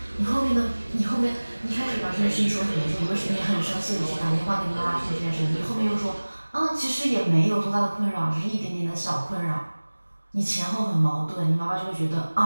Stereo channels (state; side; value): inverted; both; correlation -1.00